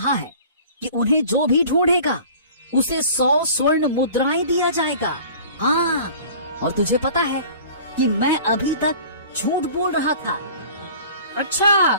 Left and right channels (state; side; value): inverted; both; correlation -0.45